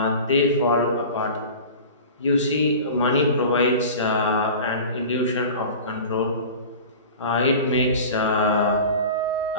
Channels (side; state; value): both; inverted; correlation -0.37